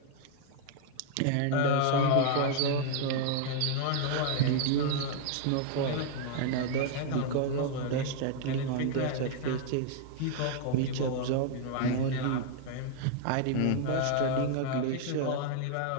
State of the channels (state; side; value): different; both; correlation 0.00